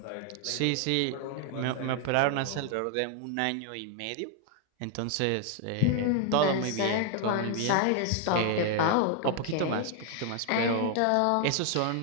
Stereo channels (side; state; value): both; different; correlation 0.00